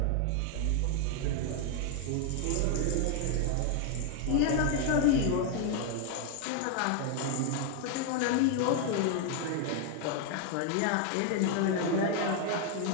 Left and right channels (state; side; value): different; both; correlation 0.01